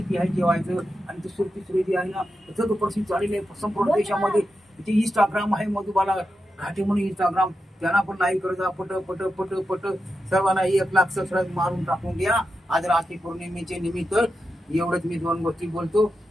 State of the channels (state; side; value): normal; both; correlation 0.88